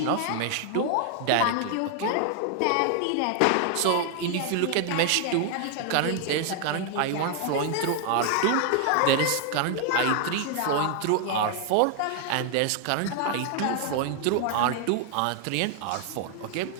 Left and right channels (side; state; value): both; different; correlation 0.00